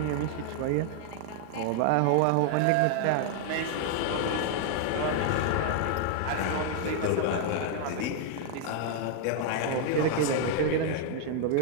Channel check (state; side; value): different; both; correlation 0.00